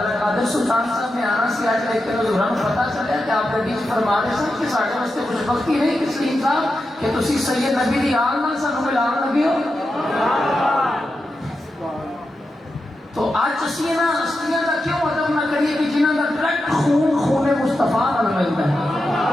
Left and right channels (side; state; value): both; normal; correlation 0.89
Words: قادر سلطان صاحب نے آنا سی آج، لیکن حضوراں کو پتہ چلیا کہ آپ کے بیچ فرما رہے سن کہ ساڈے واسطے کچھ وقتی نہیں کہ سلیم صاحب کہ تسی سید نبی دی آل نال سانوں ملان لگے ہو۔ تو آج اسی نا ہستیاں کا کیوں ادب نہ کریے کہ جنہاں کا ڈائریکٹ خون مصطفیٰ نال ملتا ہے؟